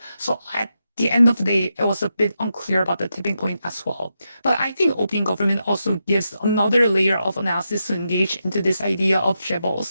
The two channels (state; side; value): inverted; both; correlation -0.86